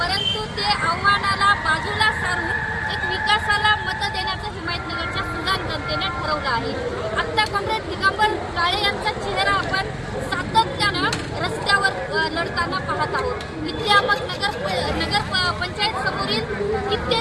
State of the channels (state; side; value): identical; both; correlation 1.00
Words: परंतु ते आव्हानाला बाजूला सारून एक विकासाला मत देण्याचं हिमायतनगरच्या सुजाण जनतेने ठरवलं आहे. आता कॉम्रेड दिगंबर काळे यांचा चेहरा आपण सातत्यानं रस्त्यावर लढताना पाहत आहोत. इथे आपण नगर पंचायत समोरील